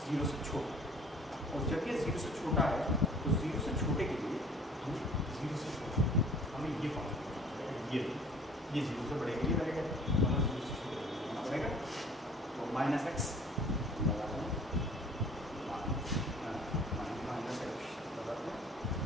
0 से छोटा, और जब ये 0 से छोटा है तो 0 से छोटे के लिए हमें 0 से छोटा हमें ये फॉर्म ये 0 से बड़े के लिए रहेगा, हमें 0 से छोटे होना पड़ेगा। तो -x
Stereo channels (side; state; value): both; normal; correlation 0.51